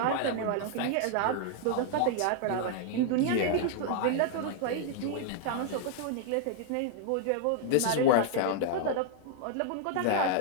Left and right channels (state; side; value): different; both; correlation -0.01